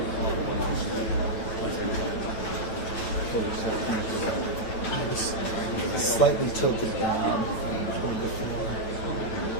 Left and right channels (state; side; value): late; right; 9.2 ms